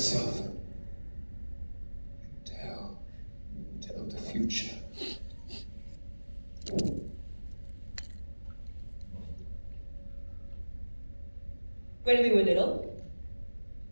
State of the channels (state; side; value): inverted; both; correlation -1.00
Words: And tell the future. When we were little,